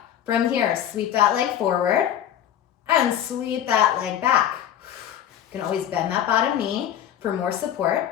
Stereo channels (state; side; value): quieter; right; 10.5 dB